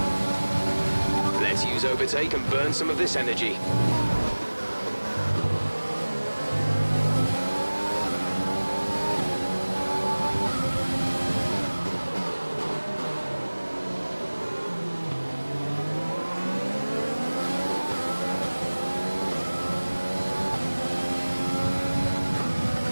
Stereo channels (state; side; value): inverted; both; correlation -1.00